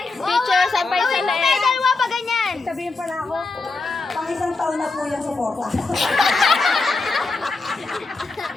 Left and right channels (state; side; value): quieter; right; 3.7 dB